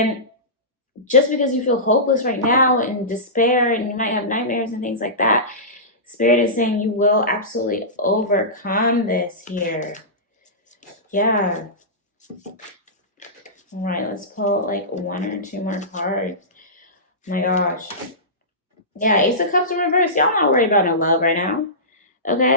just because you feel hopeless right now and despair, and you might have nightmares and things like that, Spirit is saying you will absolutely overcome this here. Yeah. All right, let's pull like 1 or 2 more cards. Oh my gosh. Yeah, Ace of Cups in reverse. Y'all not worried about no love right now.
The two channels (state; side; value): normal; both; correlation -0.19